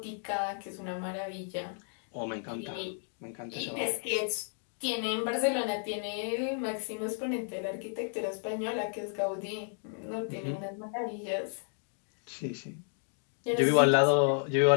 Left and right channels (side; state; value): right; silent; 56 dB below the other